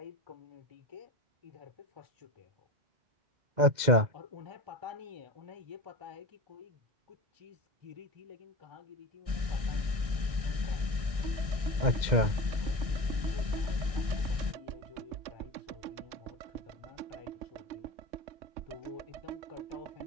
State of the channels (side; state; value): left; late; 2.0 ms